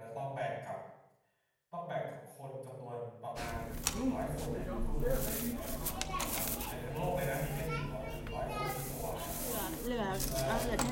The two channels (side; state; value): both; identical; correlation 1.00